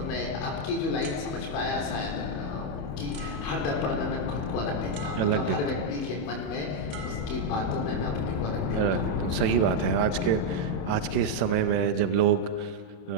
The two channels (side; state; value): right; late; 28 ms